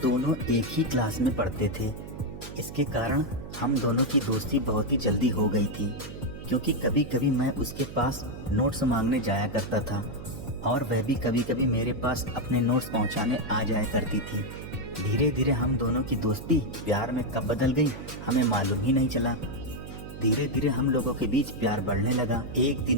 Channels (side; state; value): right; noise; hum, 11 dB below the sound